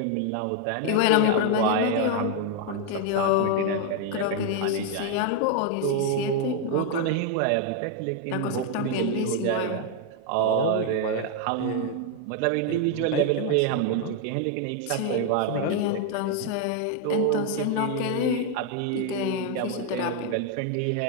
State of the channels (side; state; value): both; different; correlation 0.01